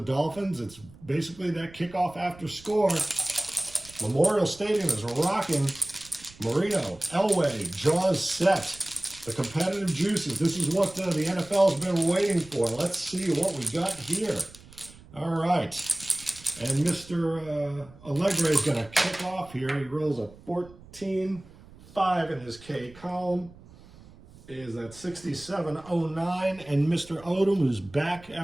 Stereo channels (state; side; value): noise; right; rumble, 22 dB below the sound